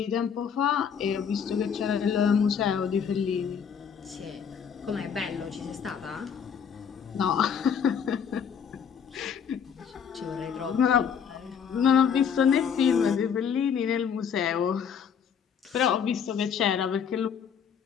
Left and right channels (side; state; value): right; quieter; 7.3 dB